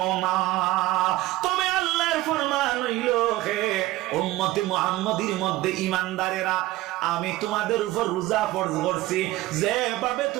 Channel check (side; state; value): left; quieter; 17.7 dB